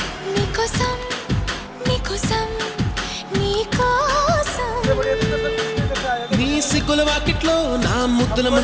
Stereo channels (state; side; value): identical; both; correlation 1.00